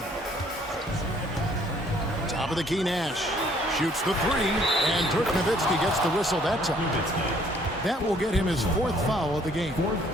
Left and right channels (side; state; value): both; normal; correlation 0.62